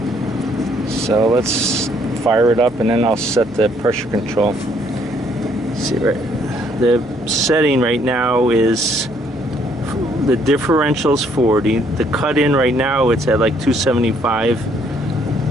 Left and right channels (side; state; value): right; noise; hum, 21 dB below the sound